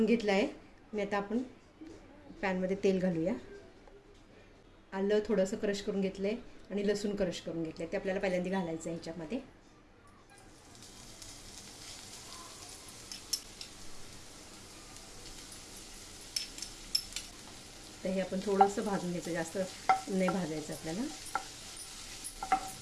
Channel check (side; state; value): both; identical; correlation 1.00